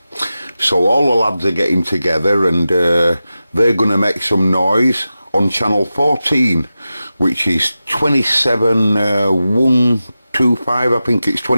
So all the lads are getting together and they're going to make some noise on channel 14, which is 27125. I think it's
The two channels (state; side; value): inverted; both; correlation -0.93